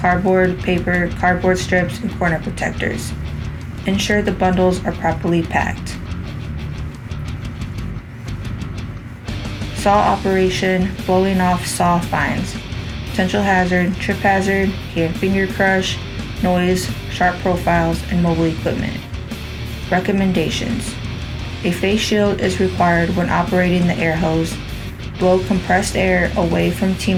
paper, cardboard strips, and corner protectors. Ensure the bundles are properly packed. Saw operation, blowing off saw fines. Potential hazard, trip hazard, hand finger crush, noise, sharp profiles, and mobile equipment. Recommendations. A face shield is required when operating the air hose. Blow compressed air away from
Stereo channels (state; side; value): identical; both; correlation 1.00